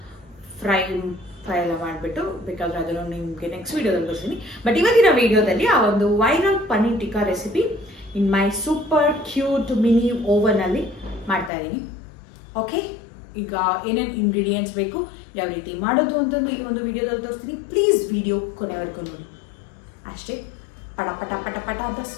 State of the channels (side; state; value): right; drops out; at 11.5 s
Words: ಫ್ರೈ ಎಲ್ಲ ಮಾಡಿಬಿಟ್ಟು. ಬೇಕಾದರೆ ಅದನ್ನು ನಿಮಗೆ ನೆಕ್ಸ್ಟ್ ವೀಡಿಯೋದಲ್ಲಿ ಬರ್ತೀನಿ. ಬಟ್ ಇವತ್ತಿನ ವೀಡಿಯೋದಲ್ಲಿ ಆ ಒಂದು ವೈರಲ್ ಪನ್ನೀರ್ ಟಿಕ್ಕಾ ರೆಸಿಪಿ ಇನ್ ಮೈ ಸೂಪರ್ ಕ್ಯೂಟ್ ಮಿನಿ ಓವನಲ್ಲಿ ಮಾಡ್ತಾ ಇದ್ದೀನಿ. ಓಕೆ, ಈಗ ಏನೇನು ಇಂಗ್ರೀಡಿಯೆಂಟ್ಸ್ ಬೇಕು, ಯಾವ ರೀತಿ ಮಾಡೋದು ಅಂತಂದು ಈ ಒಂದು ವಿಡಿಯೋದಲ್ಲಿ ತೋರಿಸ್ತೀನಿ. ಪ್ಲೀಸ್ ವಿಡಿಯೋ ಕೊನೆವರೆಗೂ ನೋಡಿ. ಅಷ್ಟೇ, ಪಟ ಪಟ ಪಟ ಪಟ ಅಂತ